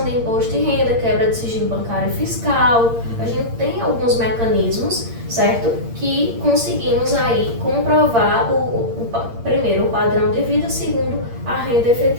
de imposto de renda, quebra de sigilo bancário e fiscal. A gente tem alguns mecanismos, certo? Que conseguimos aí comprovar primeiro o padrão de vida, segundo a renda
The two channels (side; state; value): left; late; 8.7 ms